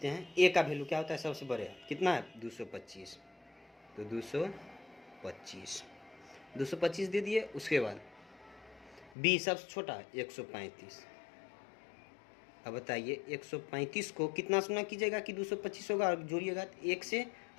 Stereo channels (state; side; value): drops out; right; at 9.1 s